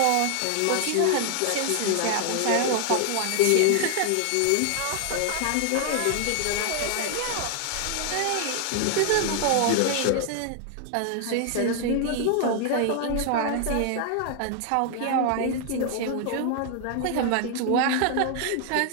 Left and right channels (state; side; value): different; both; correlation 0.00